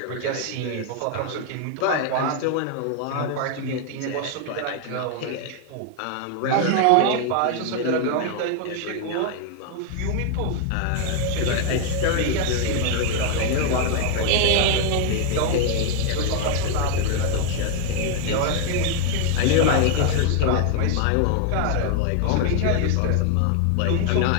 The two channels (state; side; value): different; both; correlation 0.00